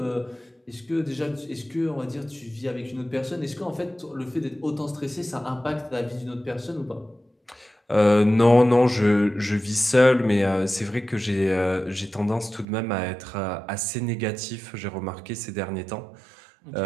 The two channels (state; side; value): drops out; left; at 12.7 s